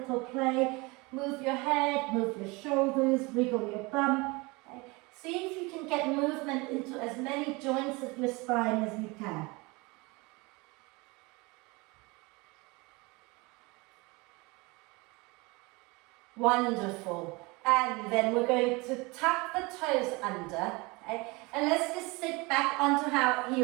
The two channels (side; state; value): left; quieter; 25.5 dB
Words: play. Move your head, move your shoulders, wriggle your bum. Okay. See if you can get movement into as many joints of your spine as you can. Wonderful. And then we're going to tuck the toes under. Okay? And let's just sit back onto our